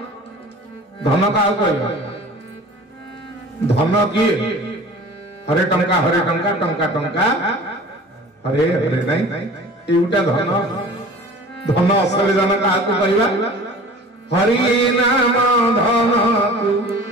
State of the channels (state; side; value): normal; both; correlation 0.42